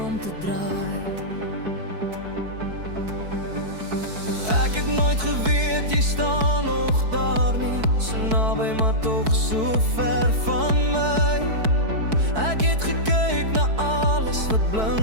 om te draai. Ek het nooit geweet jy staan nog daar nie, so naby maar tog so ver van my. Ek het gekyk na alles wat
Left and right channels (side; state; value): left; late; 4.6 ms